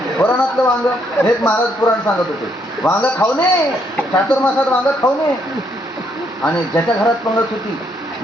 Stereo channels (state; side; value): normal; both; correlation 0.73